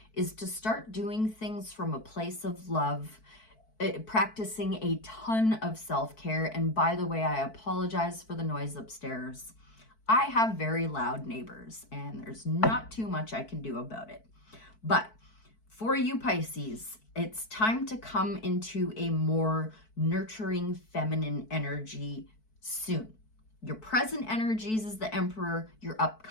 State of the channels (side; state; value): right; late; 4.6 ms